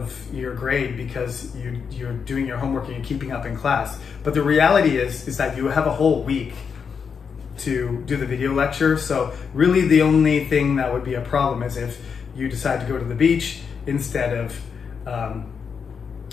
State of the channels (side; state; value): right; quieter; 6.3 dB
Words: your grade because you're doing your homework and you're keeping up in class. But the reality is that you have a whole week to do the video lecture. So really the only thing that would be a problem is if you decide to go to the beach instead of